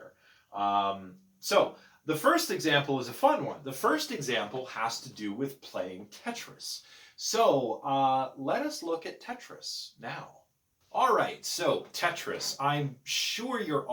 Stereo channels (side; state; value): both; identical; correlation 1.00